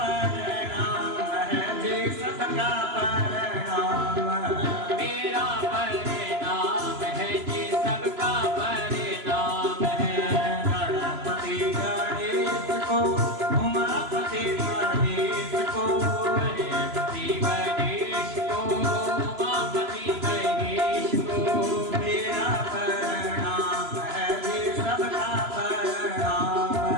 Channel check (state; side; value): late; left; 3.0 ms